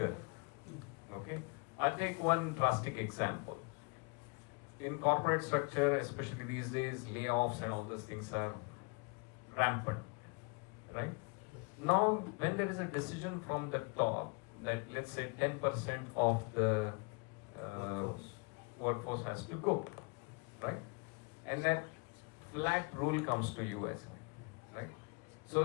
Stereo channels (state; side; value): quieter; right; 31.5 dB